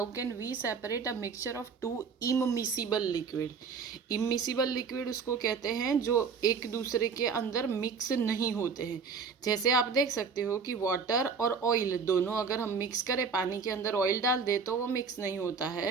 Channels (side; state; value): left; quieter; 5.6 dB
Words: can we separate a mixture of two immiscible liquid? Immiscible liquid उसको कहते हैं जो एक दूसरे के अंदर मिक्स नहीं होते हैं। जैसे आप देख सकते हो कि वाटर और ऑयल दोनों अगर हम मिक्स करें, पानी के अंदर ऑयल डाल दे तो वो मिक्स नहीं होता